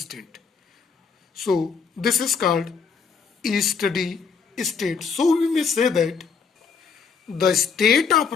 So this is called steady state. So we may say that the state of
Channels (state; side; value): quieter; right; 5.7 dB